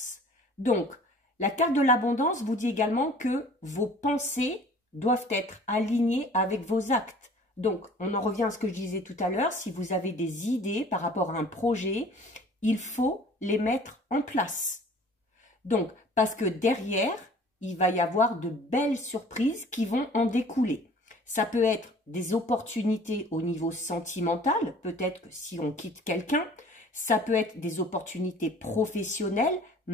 Donc, la carte de l'abondance vous dit également que vos pensées doivent être alignées avec vos actes. Donc, on en revient à ce que je disais tout à l'heure, si vous avez des idées par rapport à un projet, il faut les mettre en place. Donc, parce que derrière, il va y avoir de belles surprises qui vont en découler. Ça peut être des opportunités au niveau sentimental, peut-être que si on quitte quelqu'un, ça peut être des opportunités professionnelles,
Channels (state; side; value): normal; both; correlation 0.49